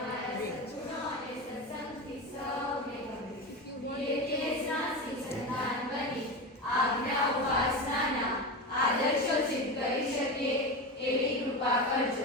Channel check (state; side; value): normal; both; correlation 0.22